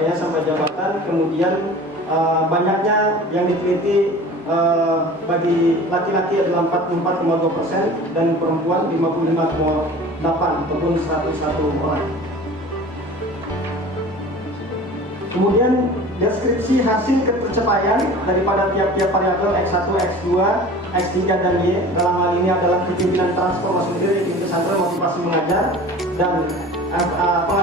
sampai jabatan, kemudian banyaknya yang diteliti bagi laki-laki adalah 44,2% dan perempuan 55,8 ataupun 101 orang. Kemudian deskripsi hasil ketercapaian daripada tiap-tiap variabel X1, X2, X3, dan Y dalam hal ini adalah kepemimpinan transformasi mudir, iklim pesantren, motivasi mengajar, dan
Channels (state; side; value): normal; both; correlation 0.40